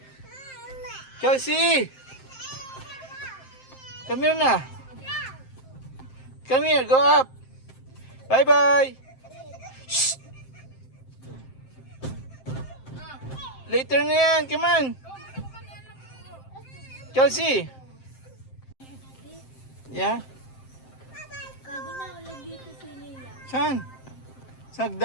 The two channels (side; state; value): right; late; 7.6 ms